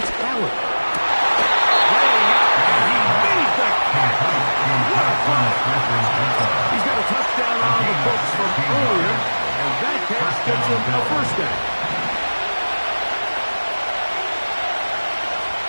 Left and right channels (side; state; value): both; inverted; correlation -1.00